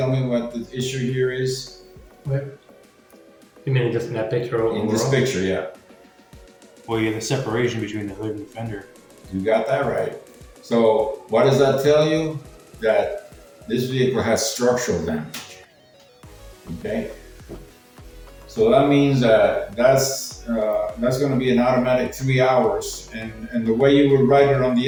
me what the issue here is? What? You mean just in that picture overall? In this picture, yeah. Well, you have the separation between the hood and the fender. You got that right. So what does that tell you? That this vehicle has structural damage. Okay. So that means that's going to be an automatic 3 hours, and the way you would write it on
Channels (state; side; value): identical; both; correlation 1.00